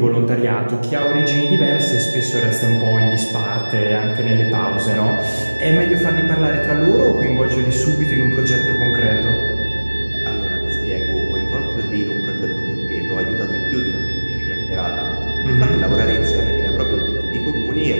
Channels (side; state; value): both; inverted; correlation -1.00